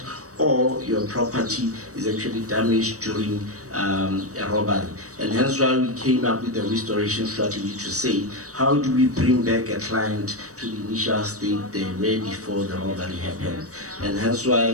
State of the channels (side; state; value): left; late; 0.66 ms